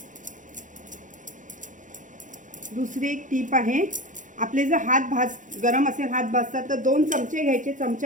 दुसरी एक टीप आहे. आपले जर हात गरम असेल, हात भाजतात तर 2 चमचे घ्यायचे.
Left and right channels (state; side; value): late; left; 0.37 ms